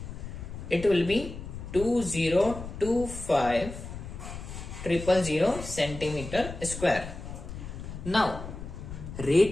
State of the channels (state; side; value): noise; left; rumble, 10 dB below the sound